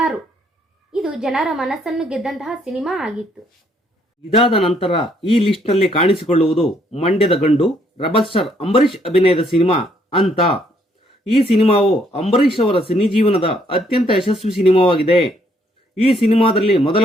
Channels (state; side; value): normal; both; correlation 0.69